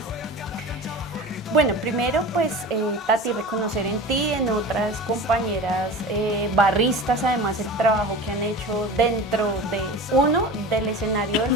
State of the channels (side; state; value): both; normal; correlation 0.33